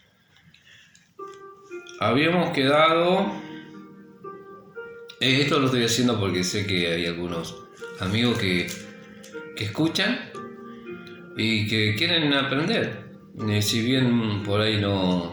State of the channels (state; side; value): identical; both; correlation 1.00